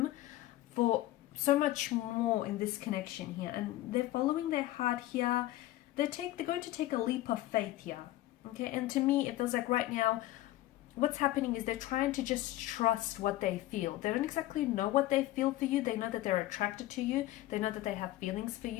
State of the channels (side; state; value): right; quieter; 15.9 dB